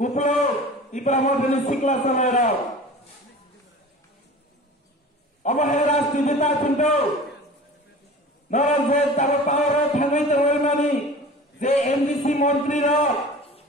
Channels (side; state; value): both; normal; correlation 0.39